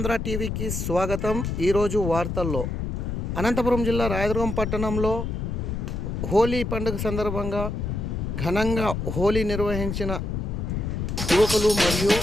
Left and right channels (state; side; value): noise; left; rumble, 3 dB below the sound